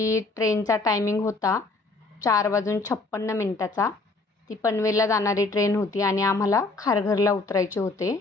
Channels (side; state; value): right; quieter; 3.5 dB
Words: ट्रेनचा टायमिंग होता 4:56 ती पनवेलला जाणारी ट्रेन होती आणि आम्हाला खारघरला उतरायचे होते.